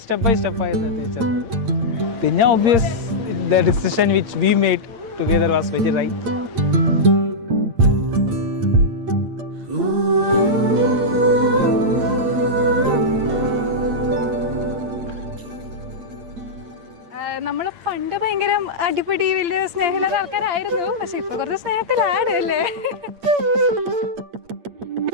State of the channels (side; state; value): left; late; 8.7 ms